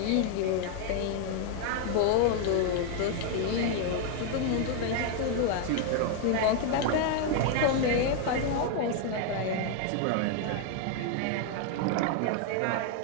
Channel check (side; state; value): both; different; correlation 0.00